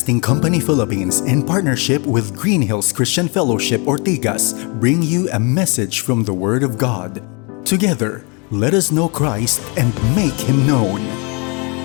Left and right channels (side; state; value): right; quieter; 32.1 dB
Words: Company Philippines, in partnership with Green Hills Christian Fellowship Ortigas, bring you a message from the Word of God. Together, let us know Christ and make Him known.